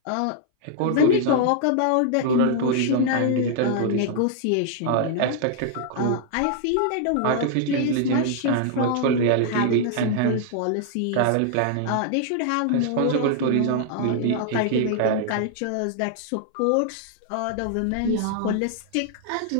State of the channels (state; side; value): different; both; correlation -0.01